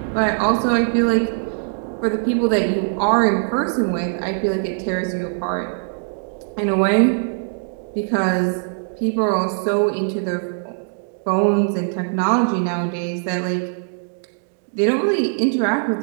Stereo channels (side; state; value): left; silent; digital silence